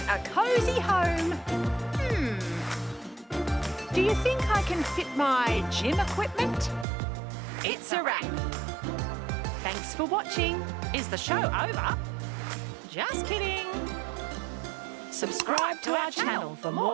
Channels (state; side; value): drops out; left; at 6.9 s